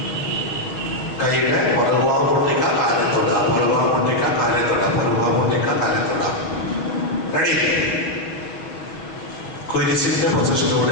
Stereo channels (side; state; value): right; late; 6.1 ms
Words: കൈയുടെ പുറകുഭാഗം പൊട്ടിക്ക, കാലിൽ തൊടുക. പുറകുഭാഗം പൊട്ടിക്ക, കാലിൽ തൊടുക. പുറകുഭാഗം പൊട്ടിക്ക, കാലിൽ തൊടുക. റെഡി? കുരിശിന്റെ